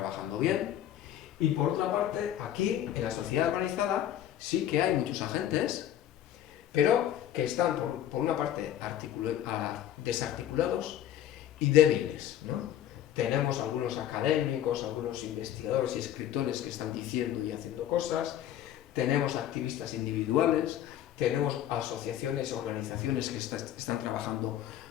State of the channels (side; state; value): right; quieter; 11.3 dB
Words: bien, y por otra parte, aquí, en la sociedad organizada, sí que hay muchos agentes, pero que están, por una parte, desarticulados y débiles, ¿no? Tenemos algunos académicos, algunos investigadores y escritores que están diciendo y haciendo cosas, tenemos activistas individuales, tenemos asociaciones, organizaciones que están trabajando